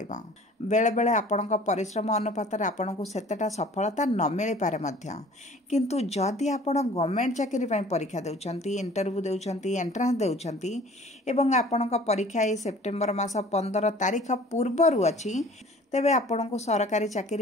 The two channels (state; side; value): normal; both; correlation 0.49